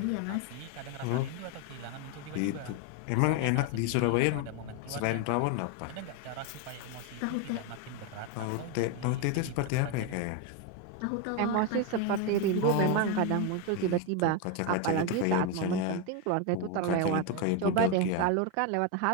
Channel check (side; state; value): both; different; correlation 0.02